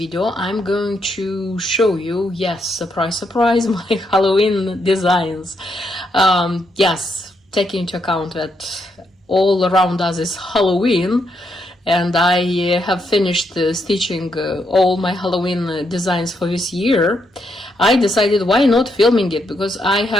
I'm going to show you, yes, surprise surprise, my Halloween designs. Yes, taking into account that all around us is Halloween, and I have finished stitching all my Halloween designs for this year. I decided why not filming it, because I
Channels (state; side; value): normal; both; correlation 0.78